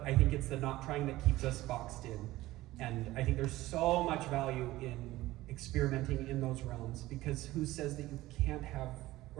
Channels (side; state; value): left; quieter; 17.2 dB